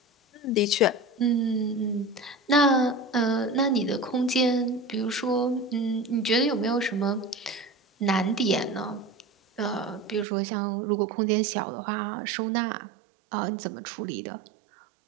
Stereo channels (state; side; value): drops out; left; at 10.2 s